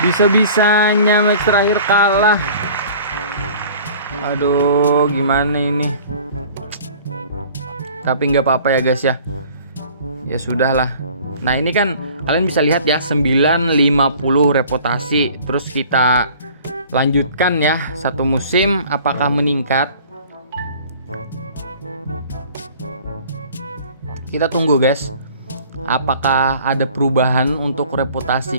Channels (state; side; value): inverted; both; correlation -0.49